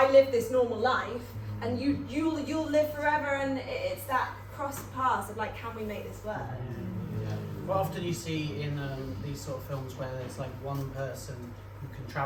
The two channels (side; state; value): both; identical; correlation 1.00